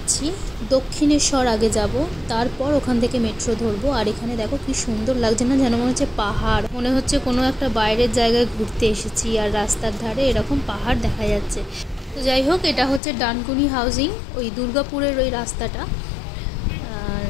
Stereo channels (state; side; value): drops out; right; at 13.0 s